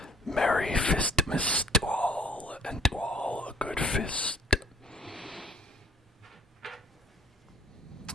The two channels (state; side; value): normal; both; correlation 0.56